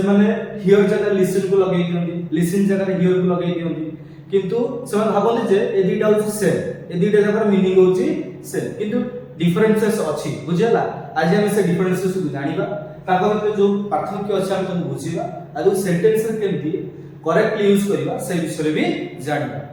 माने हियर जगह लिसन को लगेई दियंती, लिसन जगह हियर को लगेई दियंती, किंतु से माने भाबंती जे ए दुटा होची सेम, ए दुटा जगह मीनिंग होची सेम, किंतु डिफरेंसेस अछि। बुझियला? आज हम से डिफरेंसेस को जानिबा, ताको भितर जो पार्थक्य अछि हम तको बुझिबा, आ जो सेंटेंस रे केमती करेक्टली यूज करिबा से विषय भी जानिबा।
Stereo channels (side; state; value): both; identical; correlation 1.00